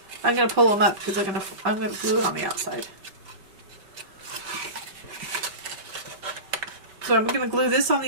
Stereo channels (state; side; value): late; left; 5.2 ms